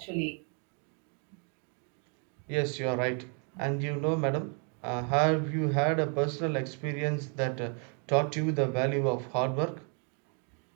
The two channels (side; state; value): left; quieter; 39.1 dB